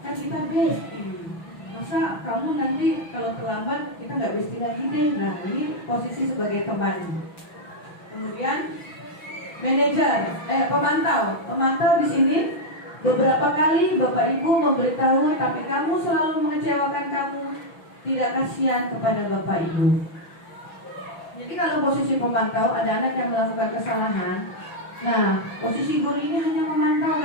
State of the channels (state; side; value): late; right; 6.0 ms